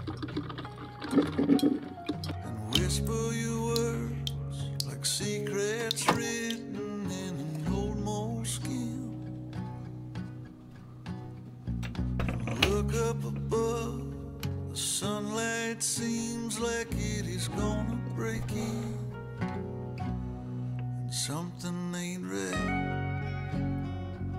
and whisper your words like secrets written in an old moleskin. Look up above, the sunlight seems like it is gonna break in, and something ain't right.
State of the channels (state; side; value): identical; both; correlation 1.00